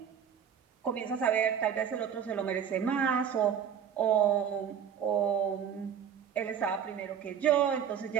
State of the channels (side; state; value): left; quieter; 8.2 dB